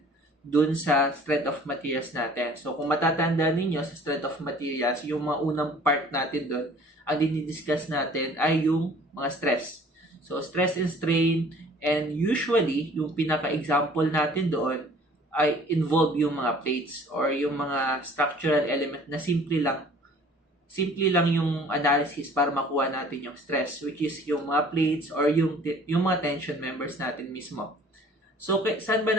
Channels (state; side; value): normal; both; correlation 0.51